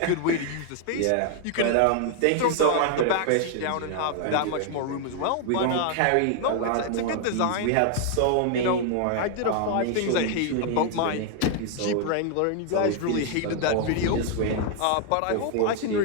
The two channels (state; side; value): different; both; correlation 0.00